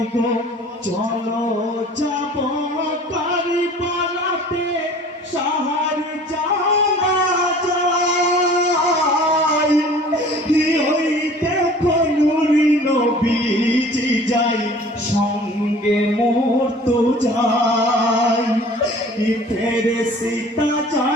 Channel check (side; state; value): both; normal; correlation 0.47